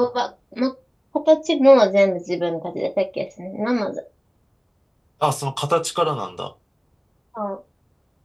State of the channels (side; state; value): both; identical; correlation 1.00